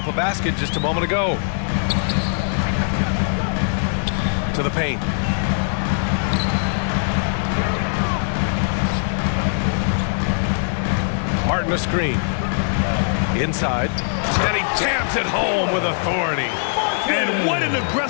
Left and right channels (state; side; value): silent; right; digital silence